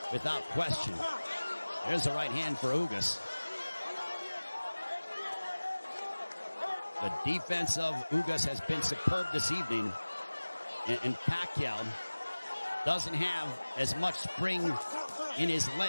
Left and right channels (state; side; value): inverted; both; correlation -1.00